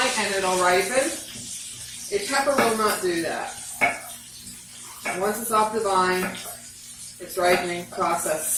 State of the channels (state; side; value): identical; both; correlation 1.00